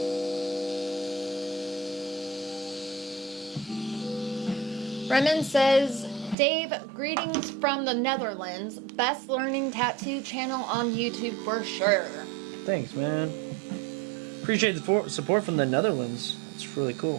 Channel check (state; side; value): drops out; left; at 6.4 s